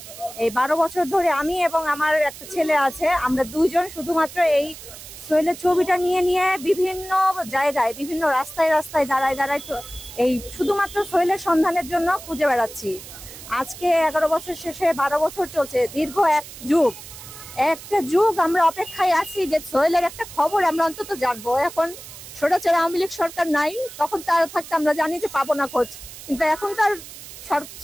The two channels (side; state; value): right; noise; hiss, 15 dB below the sound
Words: এই 12 বছর ধরে আমি এবং আমার একটা ছেলে আছে, আমরা দুইজন শুধুমাত্র এই সোহেলের ছবিটা নিয়ে নিয়ে বিভিন্ন জায়গায়, বিভিন্ন রাস্তায় রাস্তায় দাঁড়ায় দাঁড়ায় এই শুধুমাত্র সোহেলের সন্ধানের জন্য খুঁজে বেড়াচ্ছি। আজকে 11 বছর শেষে 12 বছর চলছে, দীর্ঘ একটা যুগ আমরা অপেক্ষায় আছি যে সোহেলের একটা খবর আমরা অন্তত জানবো। এখন স্বৈরাচার আওয়ামী লীগ সরকার নাই, তখন তার থাকতে আমরা জানি যে পাবো না খোঁজ, কিন্তু এখন তার